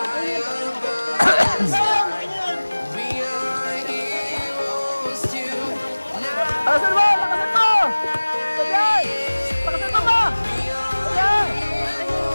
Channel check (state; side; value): inverted; both; correlation -1.00